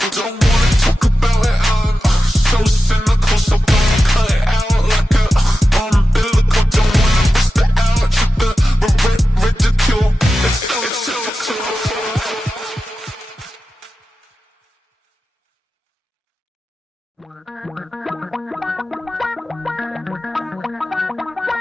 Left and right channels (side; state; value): both; normal; correlation 0.93